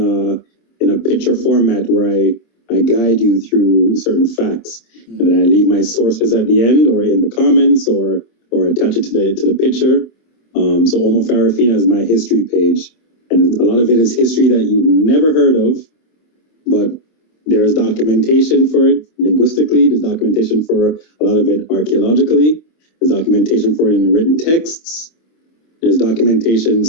picture format where I guide you through certain facts, and then I leave my sources at the end or in the comments or attach it to the picture. So Omo Farafina is my history page, and a lot of it is history that you've never heard of, but there's documentation for it linguistically. There's documentation for a lot of it archaeologically. There's documentation for it in written texts. There's documentation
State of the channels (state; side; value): late; right; 26 ms